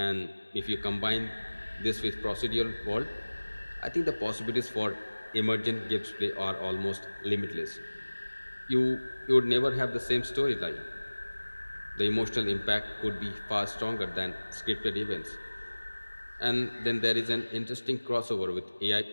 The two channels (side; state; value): both; inverted; correlation -1.00